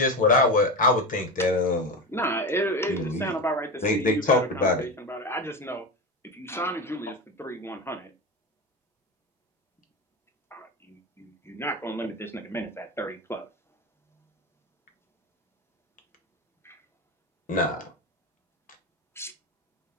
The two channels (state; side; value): normal; both; correlation 0.21